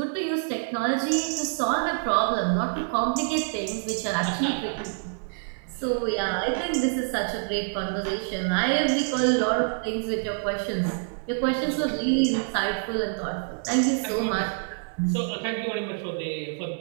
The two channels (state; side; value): silent; left; 60 dB below the other